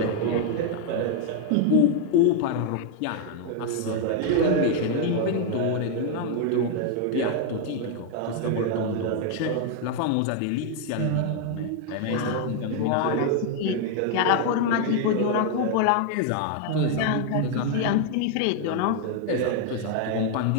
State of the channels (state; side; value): different; both; correlation 0.00